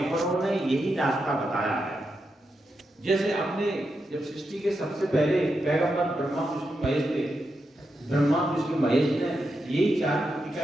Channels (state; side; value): normal; both; correlation 0.86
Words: ने यही रास्ता बताया है। जैसे अपने जब सृष्टि के सबसे पहले पैगंबर ब्रह्मा विष्णु महेश थे, ब्रह्मा विष्णु महेश ने यही 4 मुक्ति